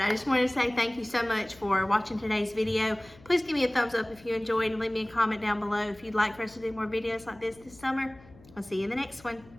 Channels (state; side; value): noise; left; hum, 24 dB below the sound